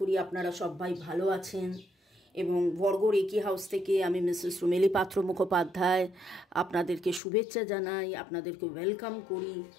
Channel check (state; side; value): drops out; right; at 7.2 s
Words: আপনারা সবাই ভালো আছেন। এবং বর্গ রেকি হাউস থেকে আমি মিসেস রুমেলি পাত্র মুখোপাধ্যায় আপনাদেরকে শুভেচ্ছা জানাই, আপনাদেরকে ওয়েলকাম করি।